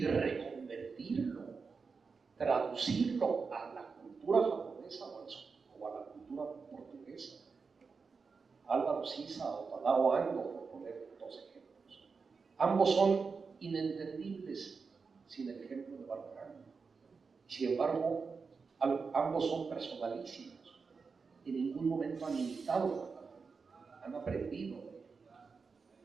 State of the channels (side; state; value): left; quieter; 5.0 dB